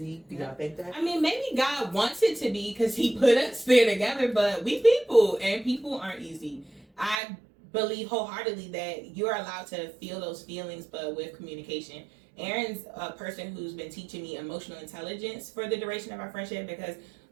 Do y'all think that? I mean, maybe God wants it to be because he put us there together, but we people, and people aren't easy. I believe wholeheartedly that you're allowed to feel those feelings, but with communication. Aaron's a person who's been teaching me emotional intelligence for the duration of our friendship, because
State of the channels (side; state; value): left; drops out; at 7.2 s